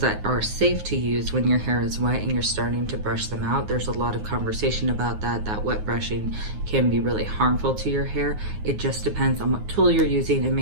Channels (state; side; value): late; left; 9.5 ms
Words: are safe to use when your hair is wet and you're starting to brush them out. There's a lot of conversation about that wet brushing can be really harmful to your hair. It just depends on what tool you're using, and